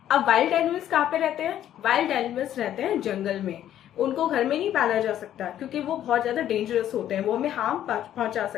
अब वाइल्ड एनिमल्स कहाँ पे रहते हैं? Wild animals रहते हैं जंगल में। उनको घर में नहीं पाला जा सकता क्योंकि वो बहुत ज्यादा डेंजरस होते हैं, वो हमें हार्म पहुंचा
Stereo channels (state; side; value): quieter; right; 11.4 dB